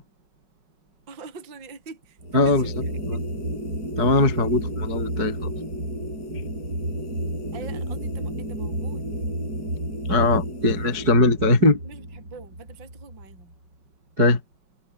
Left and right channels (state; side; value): late; left; 5.3 ms